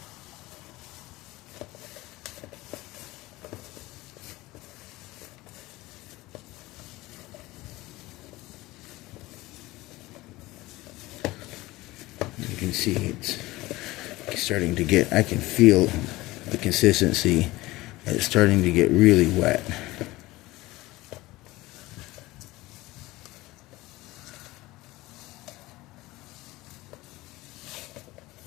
You can see it's starting to get, I can feel the consistency. It's starting to get really wet.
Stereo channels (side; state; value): right; quieter; 19.4 dB